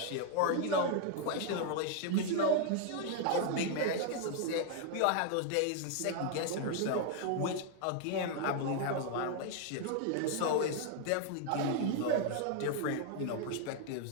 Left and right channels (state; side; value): different; both; correlation 0.00